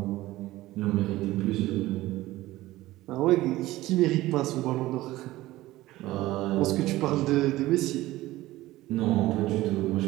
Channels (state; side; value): quieter; left; 17.0 dB